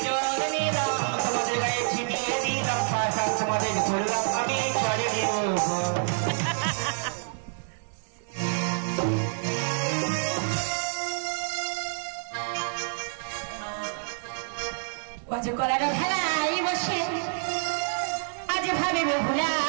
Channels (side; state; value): left; silent; digital silence